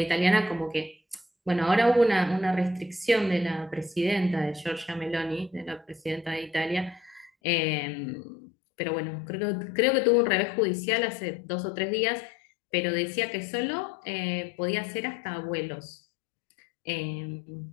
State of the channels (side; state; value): right; drops out; at 7.3 s